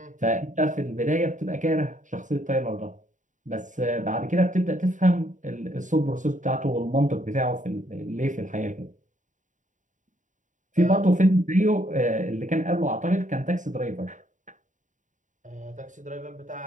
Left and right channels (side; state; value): left; late; 0.36 ms